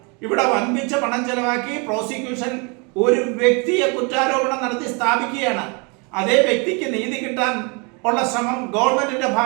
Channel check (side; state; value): left; quieter; 32.4 dB